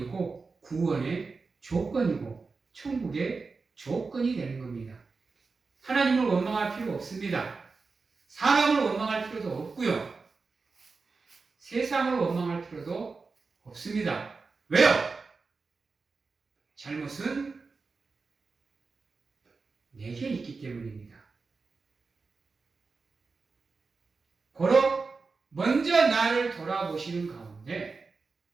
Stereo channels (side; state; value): left; quieter; 4.3 dB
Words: 구원의 조건이고 천국의 조건이 되는 겁니다. 하나님을 원망할 필요 없습니다. 사람을 원망할 필요도 없고요. 세상을 원망할 필요도 없습니다. 왜요? 잘못은 내게 있기 때문입니다. 고로 먼저 나를 돌아보시는 가운데